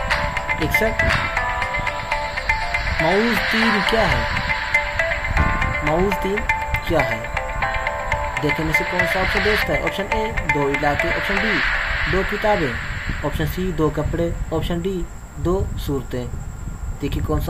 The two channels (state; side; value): identical; both; correlation 1.00